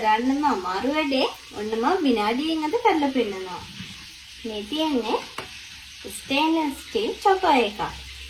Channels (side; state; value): both; identical; correlation 1.00